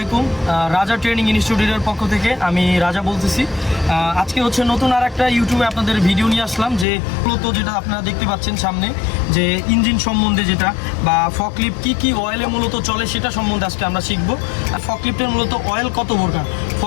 রাজা ট্রেনিং ইনস্টিটিউটের পক্ষ থেকে আমি রাজা বলতেছি। আজকে হচ্ছে নতুন আর একটা ইউটিউবে আপনাদের ভিডিও নিয়ে আসলাম, যে মূলত যেটা আপনারা দেখতে পাচ্ছেন সামনে, যে ইঞ্জিন সম্বন্ধে যেটা বা ফকলিফট কি অয়েলে মূলত চলে সেটা সম্বন্ধে আজকে আমরা শিখবো। আর ফকলিফটের মূলত অয়েল কত প্রকার,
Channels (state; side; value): drops out; right; at 6.9 s